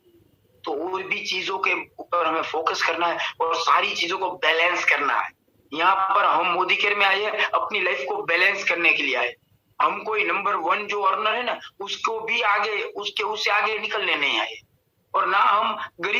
तो और भी चीजों के ऊपर हमें फोकस करना है और सारी चीजों को बैलेंस करना है। यहाँ पर हम मोदी केयर में आए हैं अपनी लाइफ को बैलेंस करने के लिए आए। हम कोई नंबर 1 जो अर्नर है ना उसको भी आगे उससे आगे निकलने नहीं आए, और ना हम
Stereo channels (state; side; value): identical; both; correlation 1.00